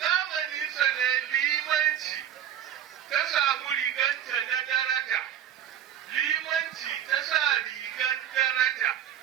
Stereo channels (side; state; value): left; quieter; 10.3 dB